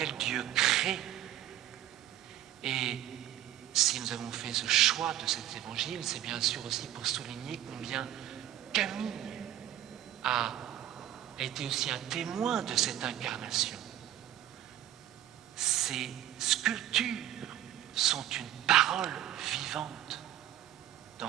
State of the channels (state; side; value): quieter; left; 12.4 dB